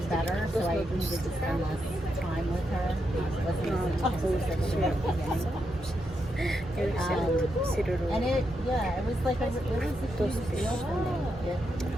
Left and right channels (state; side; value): normal; both; correlation 0.83